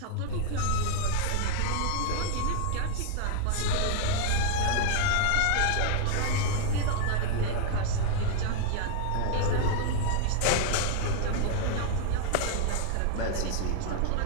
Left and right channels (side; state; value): both; different; correlation 0.00